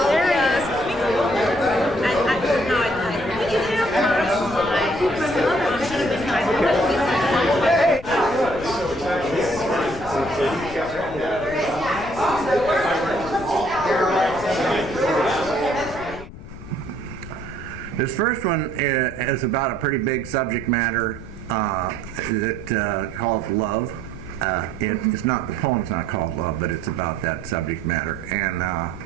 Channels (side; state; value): left; noise; rumble, 13 dB below the sound